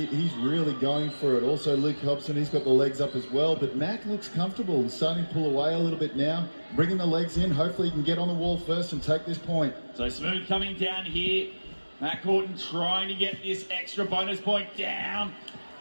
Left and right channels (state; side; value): inverted; both; correlation -1.00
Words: really going for it. Also Luke Hobson, he's got the legs up as well. But Mac looks comfortable. He's starting to pull away a little bit now. Bringing the legs in. Hopefully he can get on the wall first and take this point. So smooth coming down here. Mac Horton trying to get this extra bonus point down